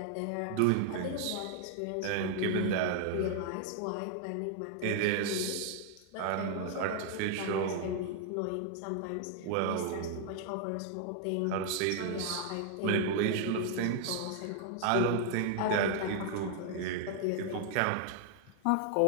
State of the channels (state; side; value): different; both; correlation 0.00